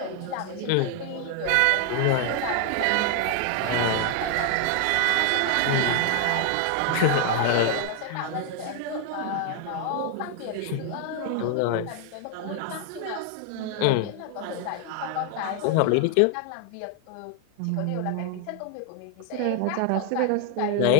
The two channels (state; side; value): different; both; correlation 0.00